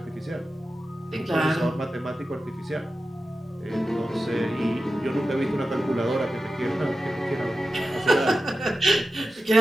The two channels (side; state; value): both; normal; correlation 0.92